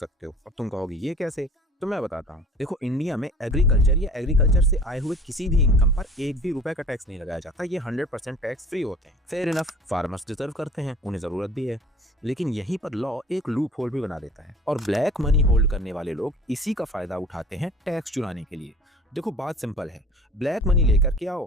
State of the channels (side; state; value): both; normal; correlation 0.46